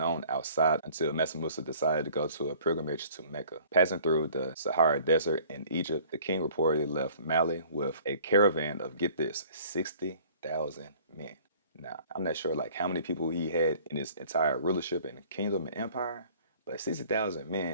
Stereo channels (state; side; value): inverted; both; correlation -0.52